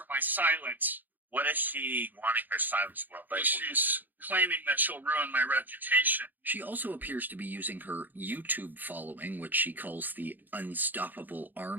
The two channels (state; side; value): late; left; 0.087 ms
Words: my silence. What is she wanting her silence for? But she's claiming that she'll ruin my reputation. She also appears to be using her YouTube following, which she calls the Unstoppable